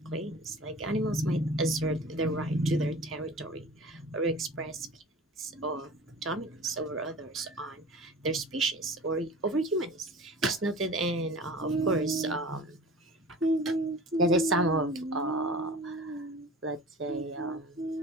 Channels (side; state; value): both; normal; correlation 0.40